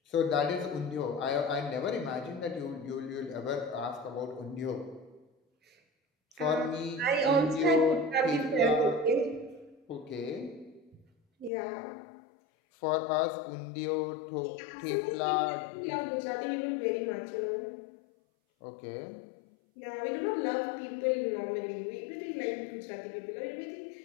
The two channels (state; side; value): drops out; right; at 11.5 s